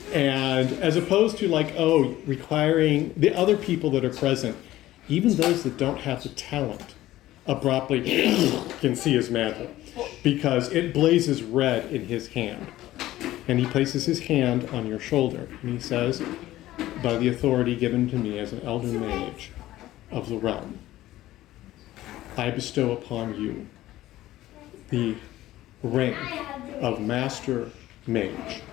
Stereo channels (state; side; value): quieter; right; 15.3 dB